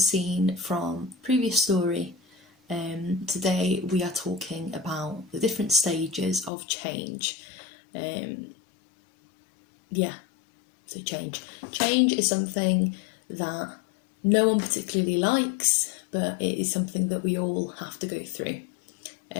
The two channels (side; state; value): right; drops out; at 6.5 s